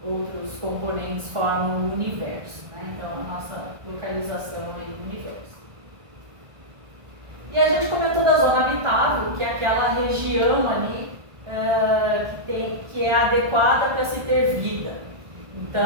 outros componentes formam o universo, né? Então a nossa localização aí no universo. E a gente comentou da zona habitável, que é aquela região ali que é adequada para se ter vida.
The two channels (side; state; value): left; late; 1.4 ms